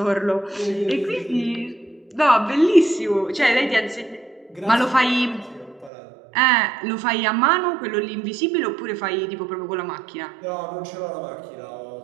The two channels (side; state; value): left; drops out; at 5.9 s